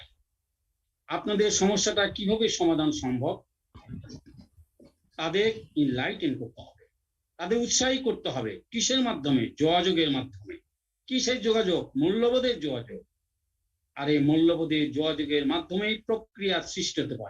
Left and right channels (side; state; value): both; identical; correlation 1.00